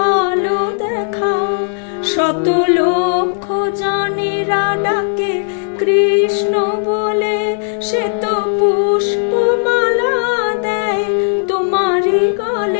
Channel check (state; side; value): silent; right; 67 dB below the other